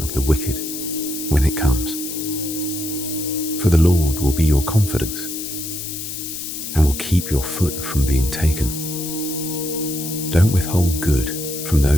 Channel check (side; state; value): left; noise; hiss, 7 dB below the sound